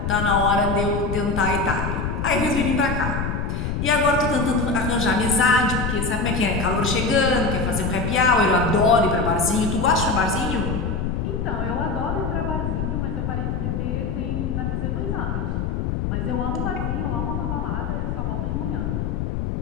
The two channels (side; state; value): left; noise; rumble, 1 dB below the sound